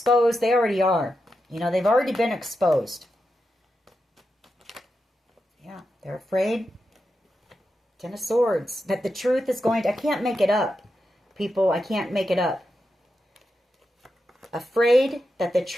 They already are. They've already been exposed. Yeah, they're afraid. Ten of Swords. That the truth is going to... I can't make it up, people. I can't make it up. Afraid that the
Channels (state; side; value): normal; both; correlation 0.88